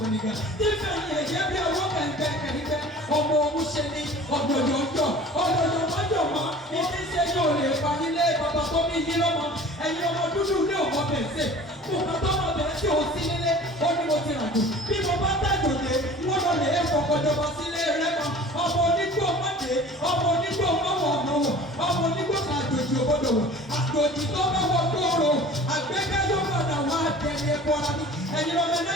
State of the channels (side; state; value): both; normal; correlation 0.44